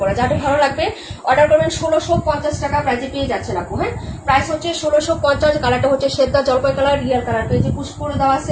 যাদের ভালো লাগবে অর্ডার করবেন। 1650 টাকা প্রাইজে পেয়ে যাচ্ছেন আপু। হ্যাঁ, প্রাইস হচ্ছে 1650। কালারটা হচ্ছে সেদ্ধা জলপাই কালার, রিয়াল কালার। পেজে পুশ করে দেওয়া আছে,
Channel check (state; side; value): identical; both; correlation 1.00